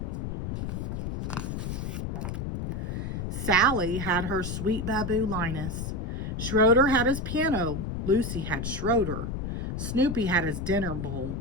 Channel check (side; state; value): left; noise; rumble, 3 dB below the sound